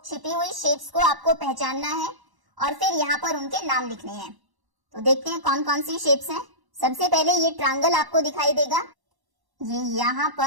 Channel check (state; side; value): late; left; 1.1 ms